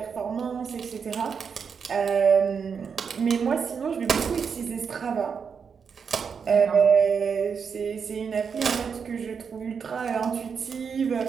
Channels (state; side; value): quieter; left; 6.3 dB